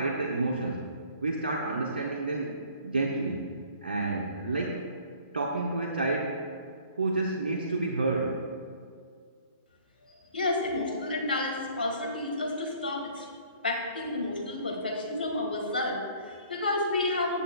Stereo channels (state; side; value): inverted; both; correlation -0.55